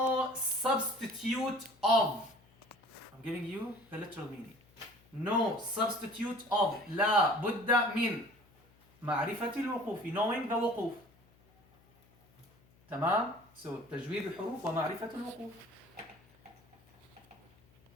substitute of. I'm giving you the literal meaning. No substitute of. La budda min معرفة الوقوف, knowing the وقوف. تمام؟ So تجويد الحروف ومعرفة الوقوف.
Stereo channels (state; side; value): noise; left; hum, 30 dB below the sound